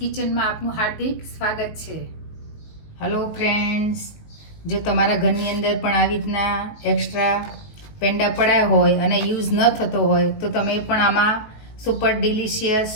આપનું હાર્દિક સ્વાગત છે. હેલો ફ્રેન્ડ્સ, જો તમારા ઘરની અંદર પણ આવી રીતના એક્સ્ટ્રા પેંડા પડ્યા હોય અને યુઝ ન થતો હોય તો તમે પણ આમાં સુપર ડિલિશિયસ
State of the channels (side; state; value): right; late; 19 ms